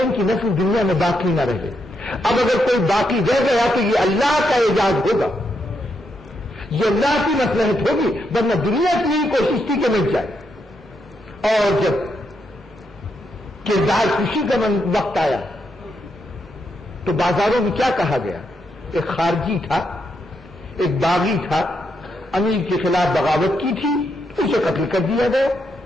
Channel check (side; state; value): both; normal; correlation 0.80